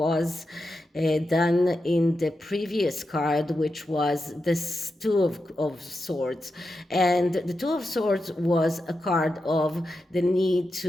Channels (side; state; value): both; normal; correlation 0.89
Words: done in the previous card, which was this Two of Swords. And the Two of Swords was a card of the need